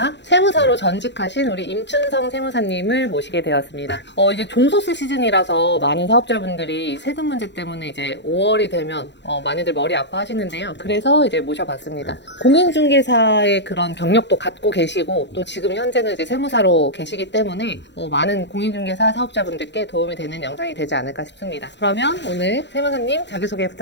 세무사로 전직하신 우리 임춘성 세무사님을 모시게 되었습니다. 이제 종소세 시즌이라서 많은 사업자분들이 세금 문제 때문에 이제 5월이 되면 많이들 머리 아파하시는데요. 그래서 이제 모셔봤습니다. 공인중개사의 그런 경력도 갖고 계시고 또 지금 현재는 이제 세무사로 계시기 때문에 많은 공인중개사 사업자분들께 도움이 되는 영상이 되지 않을까 싶습니다. 그러면 오늘 세무사님 자기소개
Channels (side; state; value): right; late; 0.52 ms